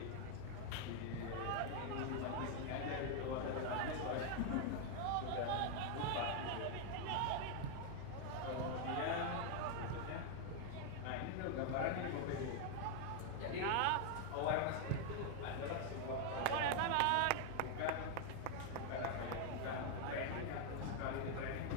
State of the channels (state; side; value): different; both; correlation 0.01